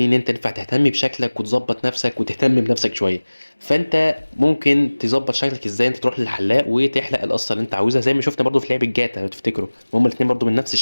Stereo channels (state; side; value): inverted; both; correlation -1.00